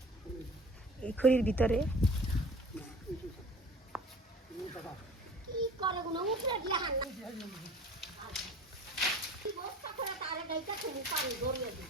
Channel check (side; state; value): both; normal; correlation 0.44